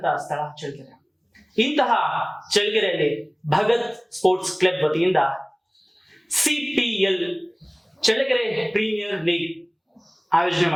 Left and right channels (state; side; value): identical; both; correlation 1.00